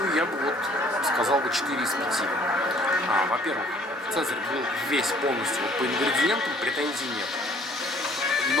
я бы сказал бы 4 из 5. Во-первых, Цезарь был весь полностью по ингредиентам, претензий нет.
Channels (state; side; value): normal; both; correlation 0.58